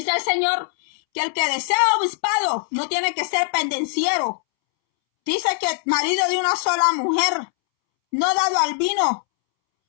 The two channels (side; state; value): right; silent; 65 dB below the other